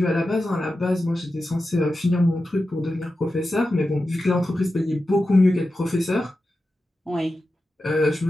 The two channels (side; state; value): both; normal; correlation 0.92